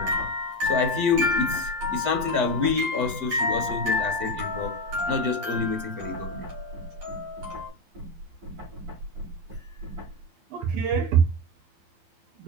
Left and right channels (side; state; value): left; late; 11 ms